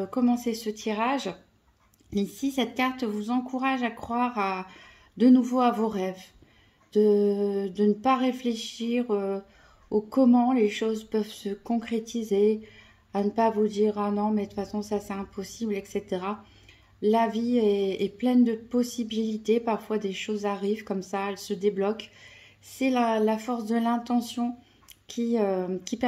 commencer ce tirage. Ici cette carte vous encourage à croire de nouveau à vos rêves, de ne pas réfléchir au comment les choses peuvent se concrétiser, à ne pas vous dire ah non mais de toute façon ça c'est impossible, etc. La vie est pleine de possibilités, parfois des choses arrivent comme ça, elles se débloquent. C'est la force de l'intention qui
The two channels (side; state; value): both; identical; correlation 1.00